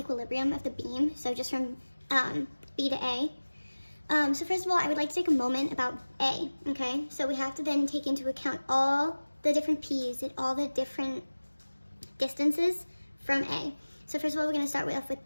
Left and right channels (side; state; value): both; inverted; correlation -1.00